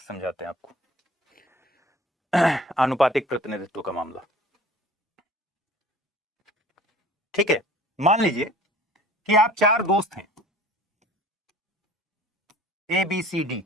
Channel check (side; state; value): both; normal; correlation 0.47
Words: समझाते हैं आपको। आनुपातिक प्रतिनिधित्व का मामला, ठीक है। मान लीजिए कि आप 4 दोस्त हैं, ए बी सी डी,